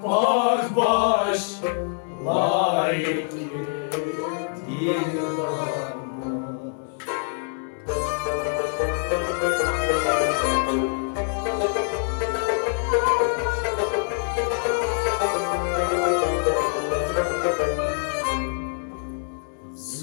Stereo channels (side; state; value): right; silent; 60 dB below the other